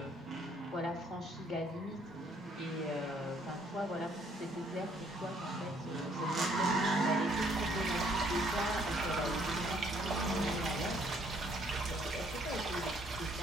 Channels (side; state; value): both; normal; correlation 0.65